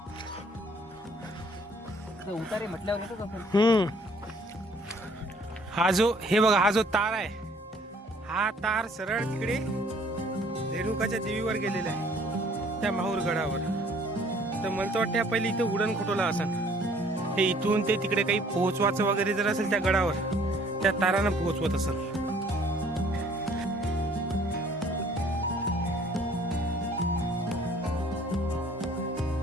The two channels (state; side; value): normal; both; correlation 0.57